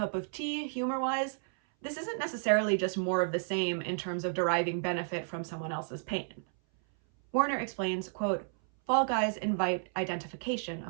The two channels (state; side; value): silent; left; 56 dB below the other